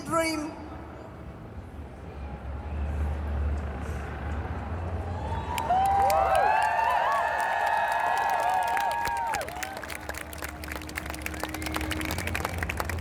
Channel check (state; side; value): identical; both; correlation 1.00